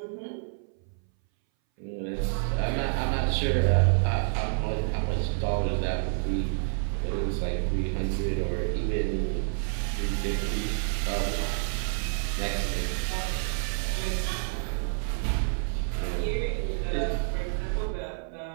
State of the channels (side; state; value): left; silent; 59 dB below the other